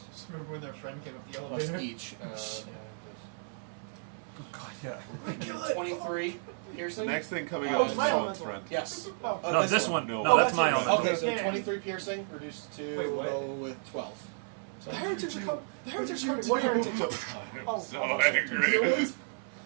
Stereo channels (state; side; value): silent; left; 56 dB below the other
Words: Just remember when their friend came up the plus elevator? each. Oh, God, yeah. 23 piercing. The next thing coming Oh, up it's is my Salt's elemental. friend. Yes. Oh. No, this one. No. No, Oh, that's that's my yours. elemental. Okay, so Yeah. 23 piercing reduced to Wait, what? go with 12. So The heretics are coming. The heretics are coming. What heretics? I'm Oh, so oh, angry.